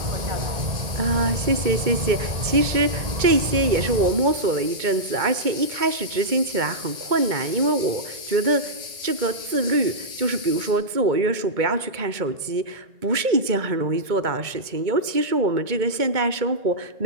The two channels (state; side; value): late; left; 2.2 ms